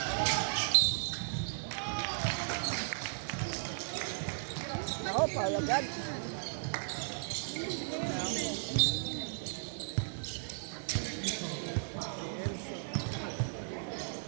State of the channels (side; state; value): left; silent; digital silence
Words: Oh, Paula God.